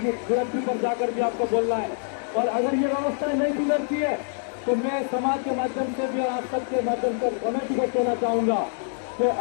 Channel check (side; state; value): right; silent; digital silence